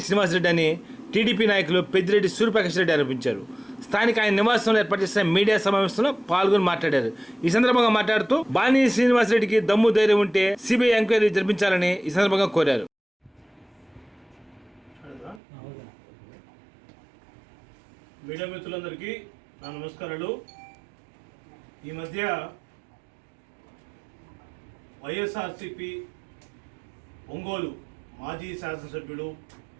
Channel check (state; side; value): drops out; left; at 15.4 s